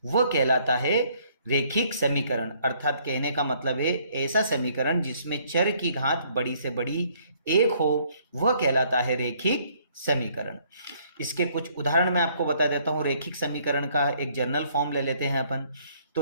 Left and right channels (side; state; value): both; inverted; correlation -0.65